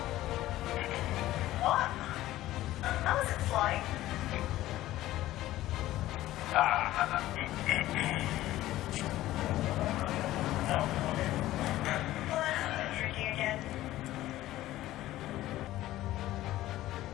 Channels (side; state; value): right; quieter; 15.3 dB